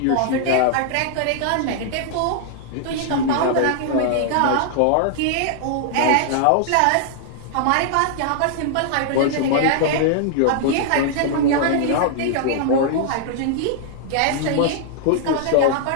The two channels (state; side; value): different; both; correlation -0.01